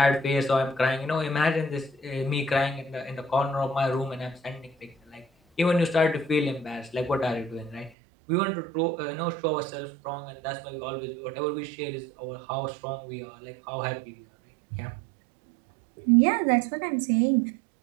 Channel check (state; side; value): drops out; left; at 7.9 s